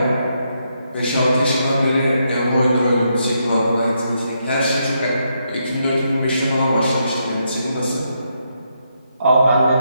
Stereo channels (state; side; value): inverted; both; correlation -0.79